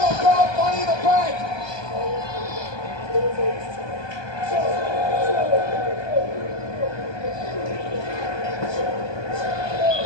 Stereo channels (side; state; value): right; late; 1.2 ms